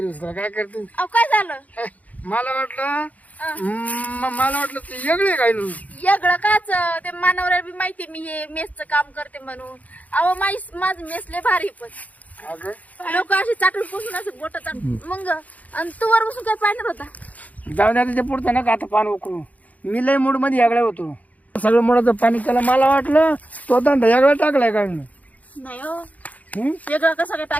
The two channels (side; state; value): right; late; 0.074 ms